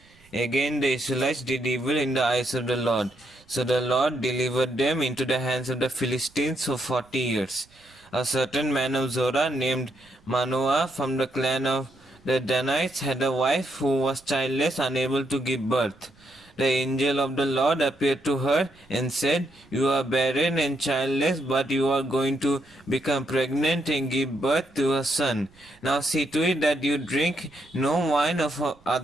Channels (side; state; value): right; noise; rumble, 29 dB below the sound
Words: Again the Israelites did evil in the eyes of the Lord. So the Lord delivered them into the hands of the Philistines for 40 years. A certain man of Zorah named Manoah from the clan of the Danites had a wife who was childless, unable to give birth. The angel of the Lord appeared to her and said, "You are barren and childless, but you are going to become pregnant and give birth to a son. Now see to it that you drink no wine or